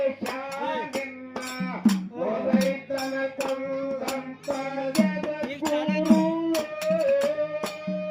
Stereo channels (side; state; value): both; identical; correlation 1.00